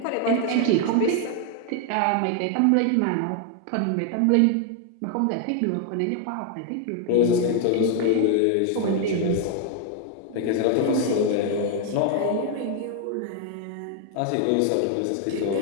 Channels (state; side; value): different; both; correlation 0.00